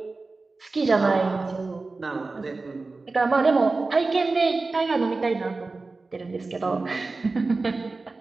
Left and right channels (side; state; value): left; quieter; 3.7 dB